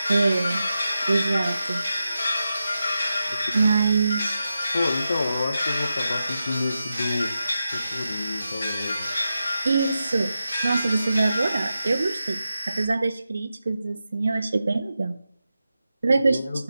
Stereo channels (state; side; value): inverted; both; correlation -0.90